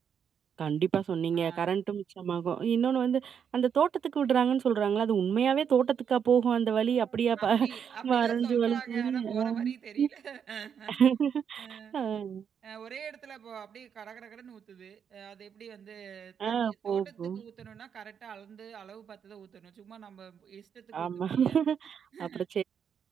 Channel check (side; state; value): left; quieter; 7.6 dB